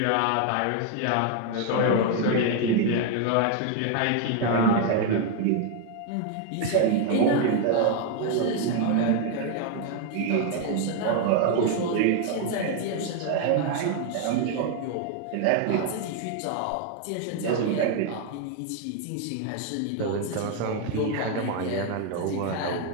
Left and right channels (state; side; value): different; both; correlation 0.01